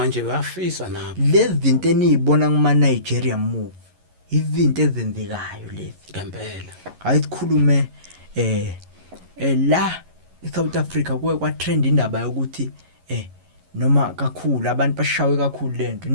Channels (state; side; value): late; left; 11 ms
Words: bayafisa nabo lezi zinto enizibona kuma Nigeria move izinto ezenzekayo lezi ngempela hayi sikhulume la eSouth Africa kuwe kwa trend indaba yokuthi noma kakhulu abantu bashawe kakhulu lento